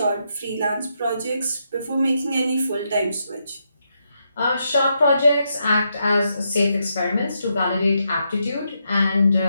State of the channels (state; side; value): inverted; both; correlation -0.81